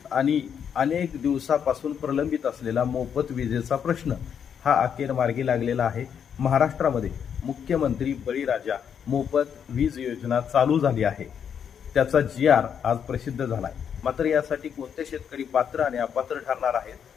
आणि अनेक दिवसापासून प्रलंबित असलेला मोफत विजेचा प्रश्न हा अखेर मार्गी लागलेला आहे। महाराष्ट्रामध्ये मुख्यमंत्री बळीराजा मोफत वीज योजना चालू झाली आहे। त्याचा GR आज प्रसिद्ध झाला आहे। मात्र यासाठी कोणते शेतकरी पात्र आणि अपात्र ठरणार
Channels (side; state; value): right; quieter; 7.9 dB